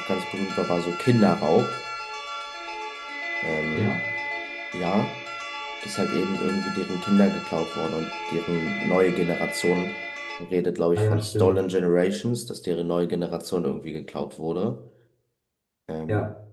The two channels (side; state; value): both; identical; correlation 1.00